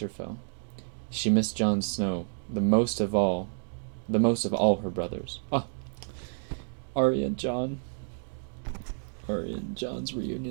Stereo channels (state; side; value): silent; left; digital silence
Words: She missed Jon Snow, the most of all her brothers. Ah, Arya and Jon. Arya and Jon's